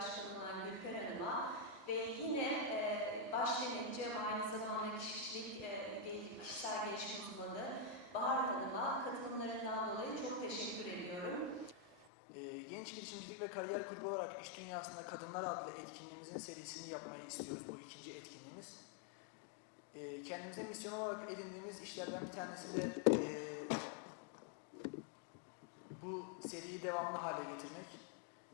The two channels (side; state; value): right; drops out; at 12.1 s